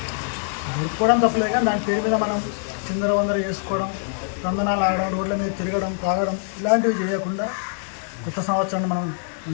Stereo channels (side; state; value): right; silent; digital silence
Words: తప్పలేదు, కానీ దాని పేరు మీద మనం చిందరవందర చేసుకోవడం, తందనాలు ఆడడం, రోడ్ల మీద తిరగడం, తాగడం ఇలాంటివి చేయకుండా కొత్త సంవత్సరాన్ని మనం